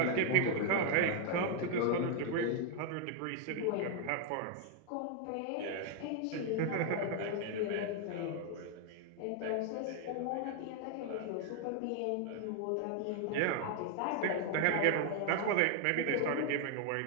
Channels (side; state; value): both; different; correlation 0.00